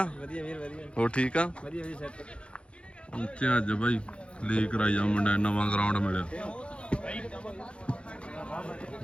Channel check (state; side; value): late; right; 0.058 ms